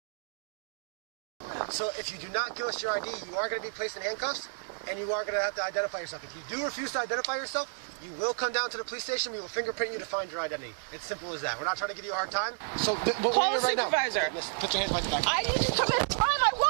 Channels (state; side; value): silent; left; digital silence